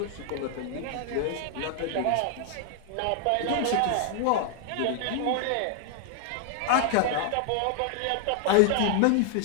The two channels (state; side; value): different; both; correlation 0.00